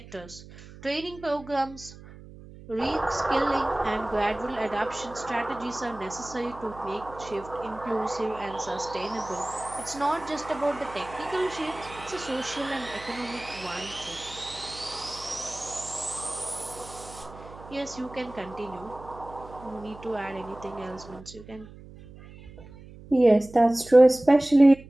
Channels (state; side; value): noise; right; hum, 18 dB below the sound